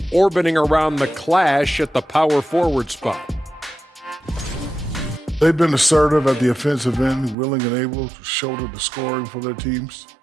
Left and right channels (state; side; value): drops out; left; at 7.4 s